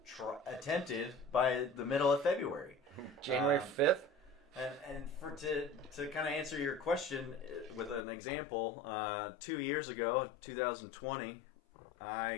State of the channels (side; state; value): right; drops out; at 8.1 s